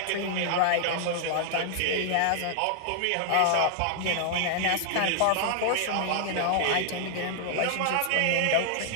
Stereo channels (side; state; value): both; different; correlation -0.01